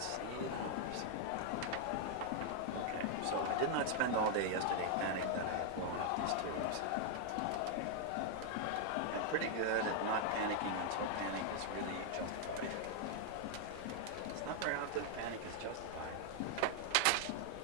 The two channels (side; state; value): both; different; correlation 0.00